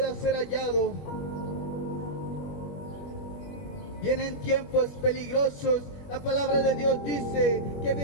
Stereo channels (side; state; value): right; late; 21 ms